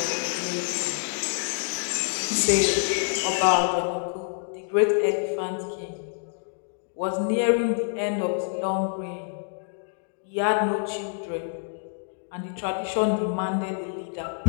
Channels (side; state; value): right; silent; digital silence